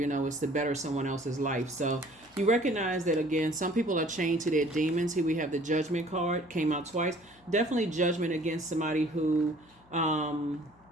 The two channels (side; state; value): left; noise; hum, 30 dB below the sound